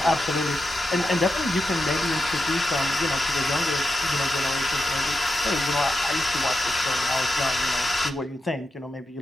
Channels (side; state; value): both; normal; correlation 0.88